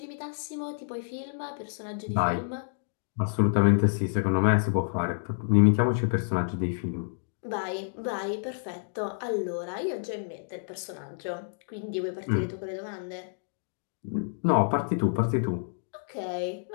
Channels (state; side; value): silent; right; digital silence